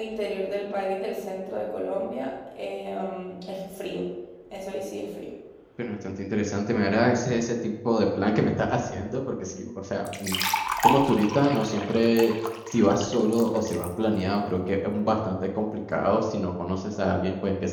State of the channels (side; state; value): both; identical; correlation 1.00